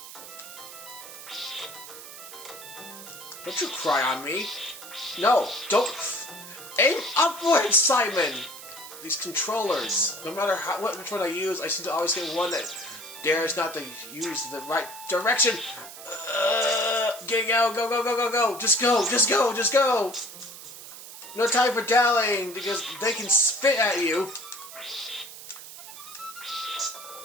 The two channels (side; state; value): right; noise; hiss, 14 dB below the sound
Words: Don't you cry on me. No, don't. Aim upwards, Simon. These controllers. No matter which one I use, I seem to always get one that dares not to use the right direction. Get out, go, go, go, go, go. Just go, just go, just go. No time for dallying because they can spit at you.